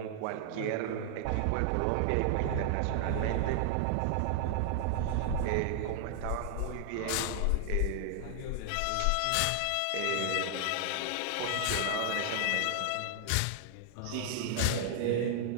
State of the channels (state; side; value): different; both; correlation 0.00